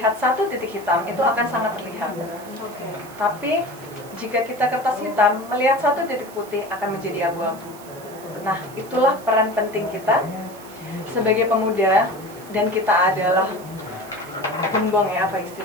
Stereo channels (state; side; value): noise; right; hiss, 20 dB below the sound